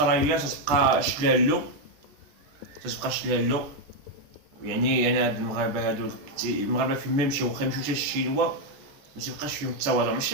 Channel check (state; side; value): late; left; 14 ms